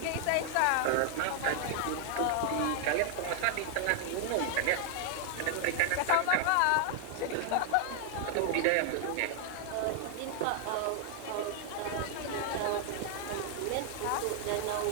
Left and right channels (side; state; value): both; different; correlation 0.00